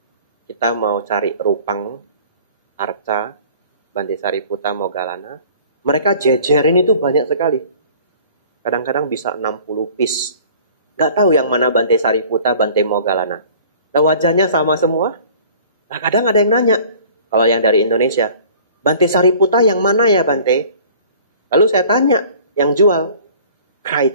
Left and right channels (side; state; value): both; inverted; correlation -0.48